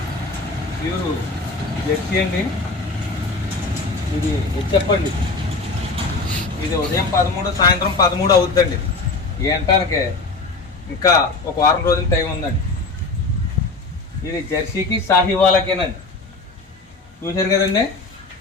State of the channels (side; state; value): right; quieter; 3.7 dB